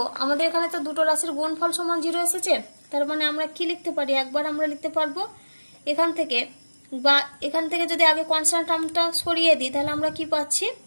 আমাদের এখানে তো দুটো রাশির গুণফল সমান 0 এসেছে, তার মানে আমরা কি লিখতে পারি, একবার আমরা লিখতে পারবো এখান থেকে, বা এখান থেকে যদি আগে কনস্ট্যান্ট টার্মটা সরিয়ে দিই তাহলে আমরা কি পাচ্ছি,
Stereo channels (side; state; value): both; inverted; correlation -1.00